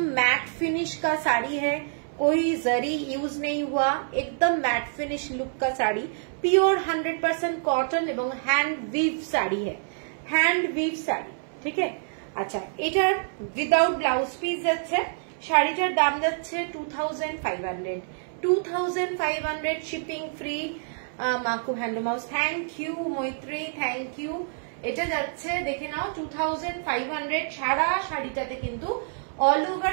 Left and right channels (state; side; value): silent; left; 60 dB below the other